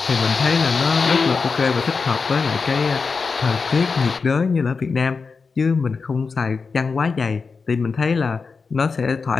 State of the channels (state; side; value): quieter; right; 4.8 dB